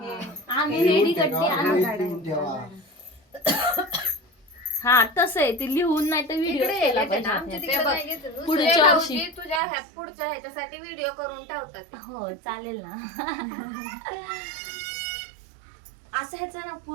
आम्ही लिहून रेडी ठेवा, गड्डी आणू. लिहून ठेवा. हा तसं आहे ते लिहून नाही तर व्हिडिओ इकडे केला येते ना, पाहिजे आमच्या आपल्याला. तिकडे नाही घेत. दुसरे पुढच्या वर्षी. भाऊजी तुझ्या पुढच्या ह्याच्यासाठी व्हिडिओ करून ठेवतात. हो चालेल ना. असं ह्याचा ना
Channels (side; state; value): left; drops out; at 9.6 s